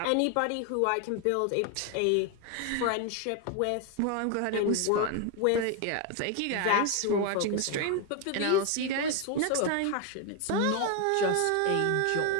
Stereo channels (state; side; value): different; both; correlation 0.01